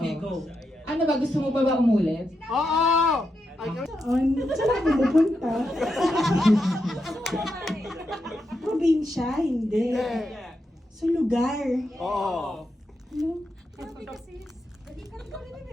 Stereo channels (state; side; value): normal; both; correlation 0.85